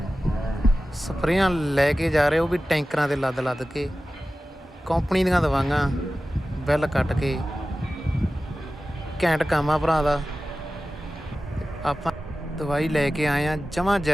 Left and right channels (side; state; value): both; normal; correlation 0.95